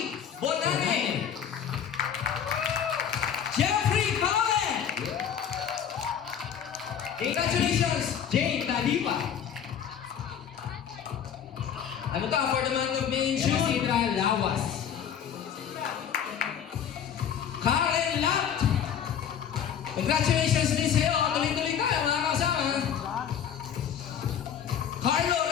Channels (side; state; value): right; quieter; 8.5 dB